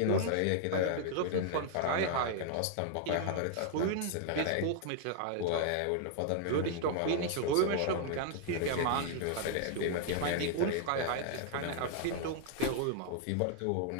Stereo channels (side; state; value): both; different; correlation -0.01